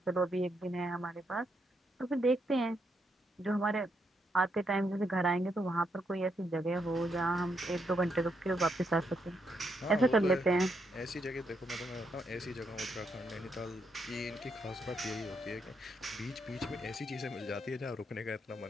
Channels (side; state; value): both; normal; correlation 0.78